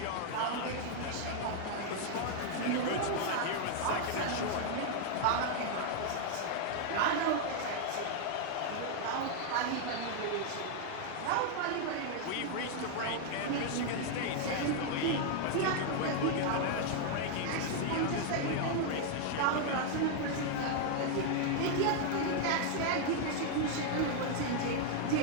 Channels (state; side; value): different; both; correlation 0.00